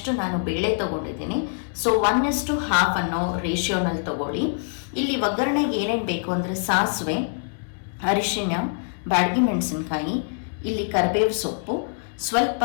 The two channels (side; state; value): right; silent; digital silence